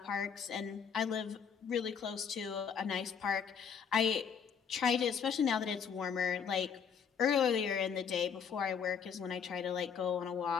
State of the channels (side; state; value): right; quieter; 6.9 dB